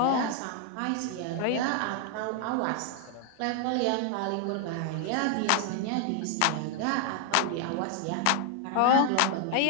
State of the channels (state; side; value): different; both; correlation 0.00